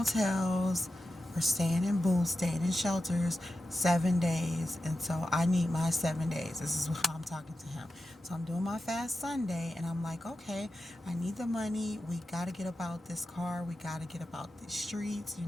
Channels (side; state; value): both; normal; correlation 0.91